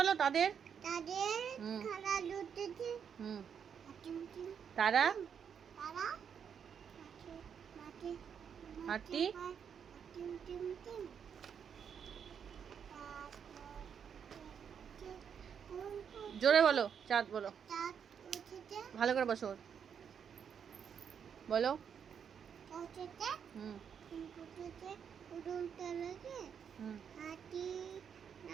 তাদের হুম, তারা হাতি। জোরে বলো। চাঁদ বলো, ভালো করে বসো। বলো। হুম হুম, হাতি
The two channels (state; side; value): quieter; left; 7.5 dB